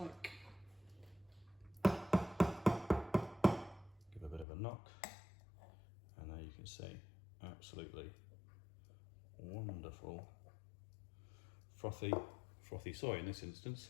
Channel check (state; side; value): drops out; right; at 4.5 s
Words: give a bit of a knock, and there you can see absolutely wonderful frothy soy in this instance.